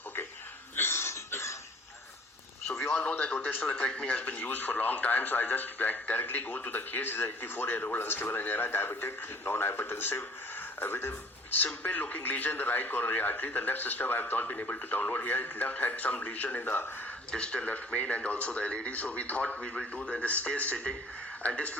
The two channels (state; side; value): normal; both; correlation 0.51